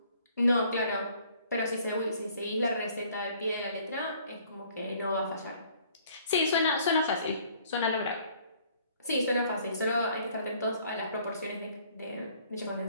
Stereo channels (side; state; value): both; inverted; correlation -0.59